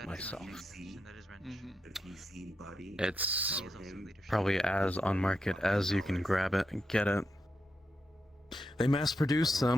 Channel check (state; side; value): normal; both; correlation 0.85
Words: myself. And that is wrench. It's probably as on market as you can grab it and get it. They mass produce